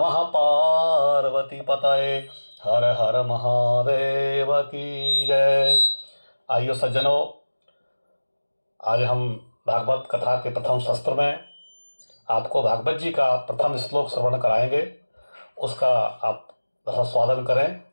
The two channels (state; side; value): inverted; both; correlation -1.00